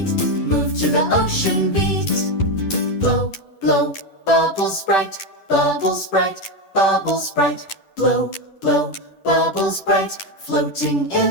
Move to the ocean beat. Blow, blow, bubbles bright, bubbles bright, bubbles bright. Blow, blow, bubbles bright, floating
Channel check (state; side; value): late; right; 10 ms